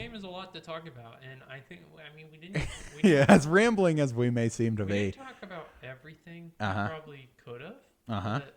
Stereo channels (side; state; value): both; identical; correlation 1.00